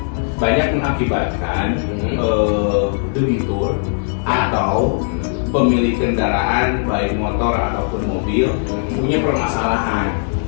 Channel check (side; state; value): right; silent; 67 dB below the other